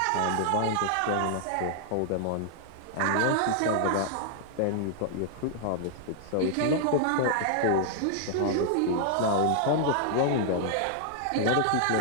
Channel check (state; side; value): different; both; correlation -0.01